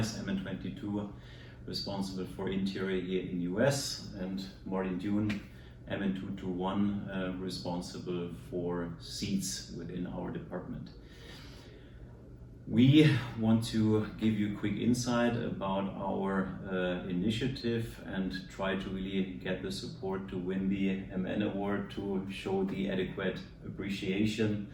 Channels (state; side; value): identical; both; correlation 1.00